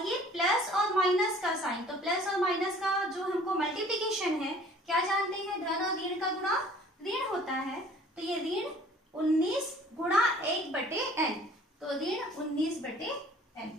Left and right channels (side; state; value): both; normal; correlation 0.52